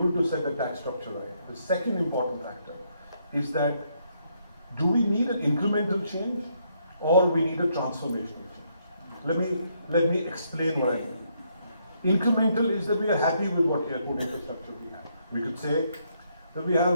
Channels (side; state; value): both; inverted; correlation -0.74